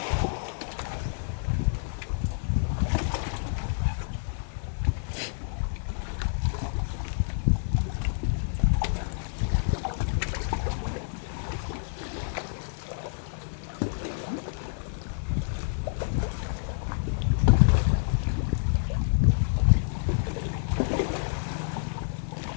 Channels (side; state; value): right; silent; 57 dB below the other